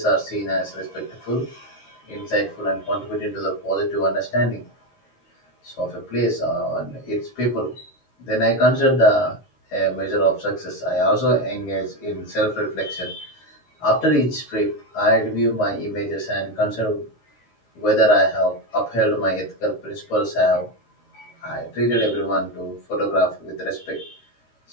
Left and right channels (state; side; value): late; right; 13 ms